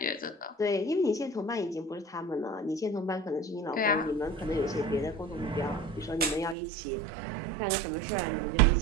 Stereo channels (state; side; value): drops out; left; at 6.6 s